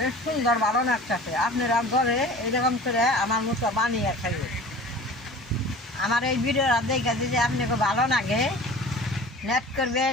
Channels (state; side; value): normal; both; correlation 0.41